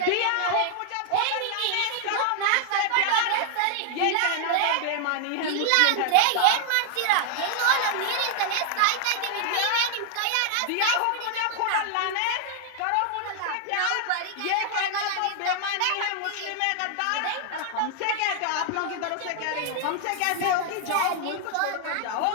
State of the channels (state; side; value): different; both; correlation -0.01